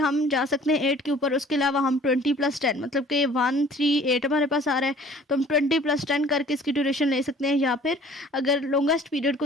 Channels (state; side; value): normal; both; correlation 0.51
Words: जा सकते हैं 8 के ऊपर। उसके अलावा हम 20 + 10 मतलब कि 1 3 8 हमारे पास आ रहा है, तो हम 20 + 10 करके इसकी ड्यूरेशन ले सकते हैं, या फिर अगर लॉन्गेस्ट पीरियड